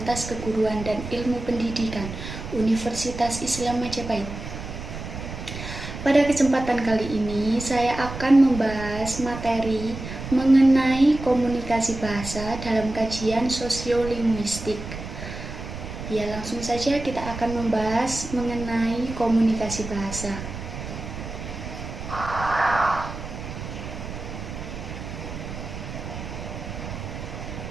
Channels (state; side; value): noise; right; rumble, 9 dB below the sound